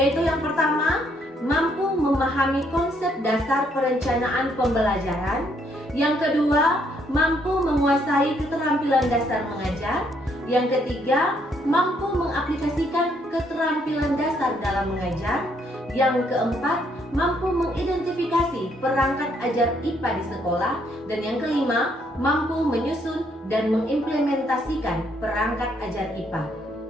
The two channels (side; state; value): both; normal; correlation 0.70